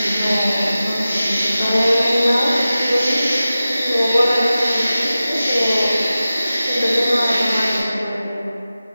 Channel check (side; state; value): both; inverted; correlation -0.94